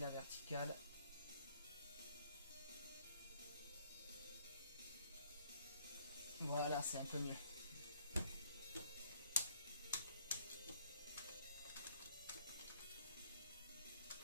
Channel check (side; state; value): both; inverted; correlation -0.64